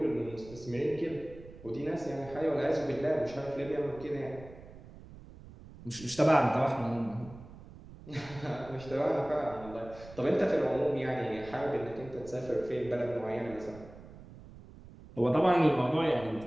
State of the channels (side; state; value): right; noise; rumble, 18 dB below the sound